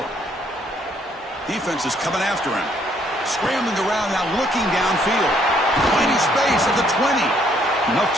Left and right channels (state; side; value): normal; both; correlation 0.67